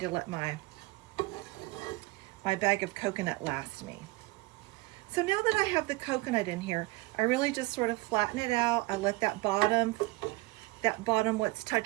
let my bag of coconut last me. So now that I have the coconut in here, I really just sort of flatten it out. I let that bottom what's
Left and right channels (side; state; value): left; quieter; 22.4 dB